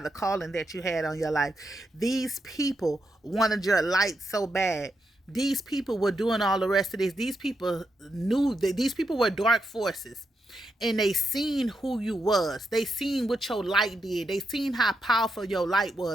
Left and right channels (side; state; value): both; normal; correlation 0.84